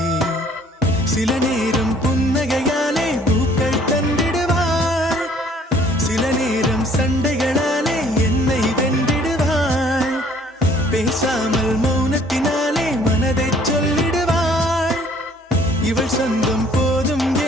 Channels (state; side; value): normal; both; correlation 0.58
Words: சில நேரம் புன்னகையாலே பூக்கள் தந்திடுவாள் சில நேரம் சண்டைகளாலே என்னை வென்றிடுவாள் பேசாமல் மௌனத்தினாலே மனதை சொல்லிடுவாள் இவள் சொந்தம் போதும்